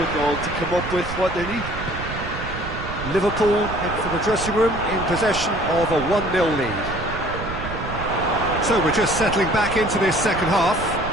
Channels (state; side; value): noise; right; rumble, 8 dB below the sound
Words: to come up with what they need. Liverpool head for the dressing room in possession of a 1-0 lead. So we're just settling back into this second half.